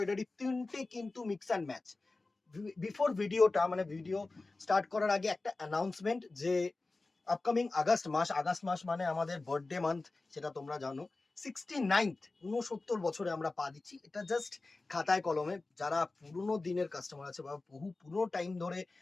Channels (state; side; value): quieter; right; 3.4 dB